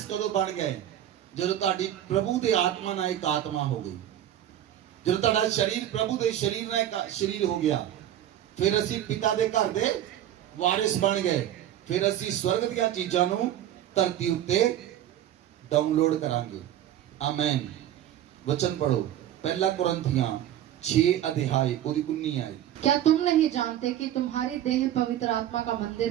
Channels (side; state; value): left; quieter; 11.8 dB